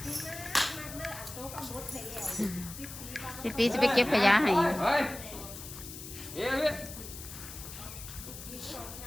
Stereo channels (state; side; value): noise; left; hiss, 12 dB below the sound